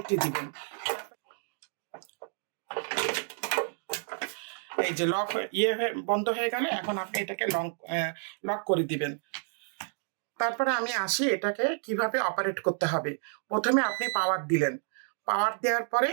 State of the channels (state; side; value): silent; left; 58 dB below the other